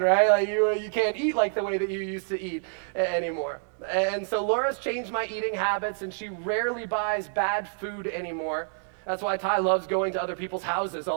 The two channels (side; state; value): left; silent; digital silence